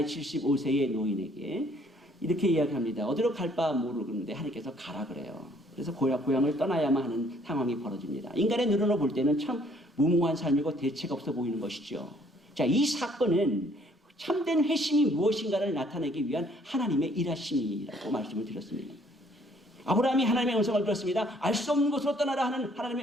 75세의 노인에게 이렇게 이야기합니다. 어디로 갈 바 모르는데 하나님께서 가라 그래요. 그래서 고향을 떠나야만 하는 상황이 벌어집니다. 인간의 눈으로 볼 때는 참 무모한 삶이고 대책 없어 보이는 것이죠. 자, 이 사건은 참된 회심이 무엇인가를 나타내기 위한 하나님의 일하심이라고 말씀을 드렸습니다. 아브라함이 하나님의 음성을 들었습니다. 알 수 없는 곳으로 떠나라 하는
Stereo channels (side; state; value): both; normal; correlation 0.62